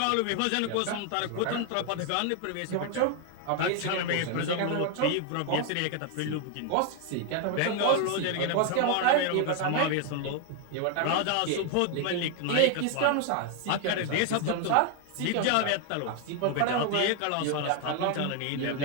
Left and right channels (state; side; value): different; both; correlation 0.00